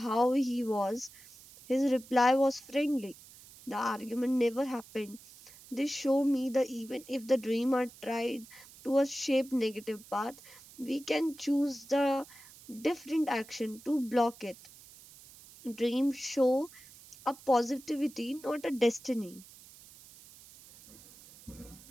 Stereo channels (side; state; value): right; noise; hiss, 21 dB below the sound